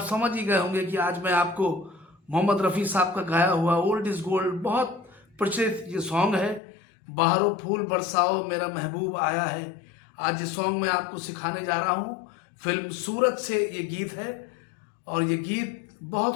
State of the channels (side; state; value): right; drops out; at 6.6 s